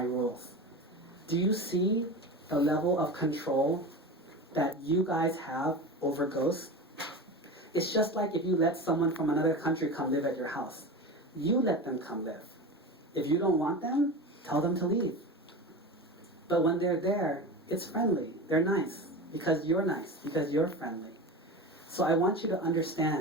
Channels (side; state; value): both; normal; correlation 0.28